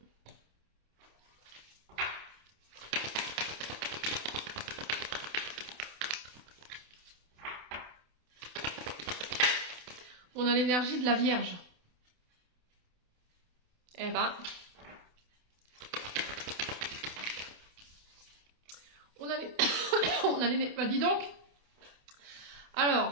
On a l'énergie de la Vierge. Eh ben, on a les... Bah, dis donc.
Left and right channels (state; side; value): late; left; 28 ms